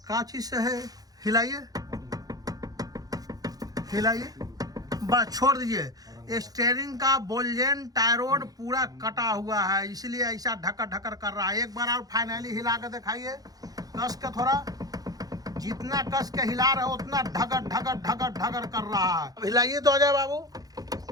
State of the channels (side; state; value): left; late; 0.18 ms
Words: कांची से है, हिलाइए हिलाइए, बस छोड़ दीजिए। स्टीयरिंग का बोल्जेन टायरोड पूरा कटा हुआ है, इसलिए ऐसा ढकर ढकर कर रहा है। एक बार और फाइनली हिला कर दिखाइए, कस के थोड़ा, जितना कस के हिला रहे हो उतना ढगर ढगर ढगर ढगर कर रहा है। हिलाइए तो अजय बाबू,